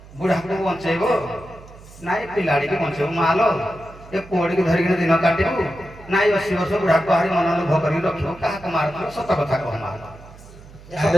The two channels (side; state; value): right; noise; hum, 20 dB below the sound